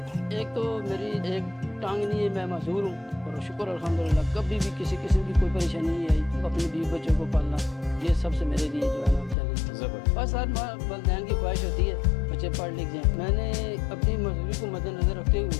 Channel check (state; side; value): drops out; right; at 9.3 s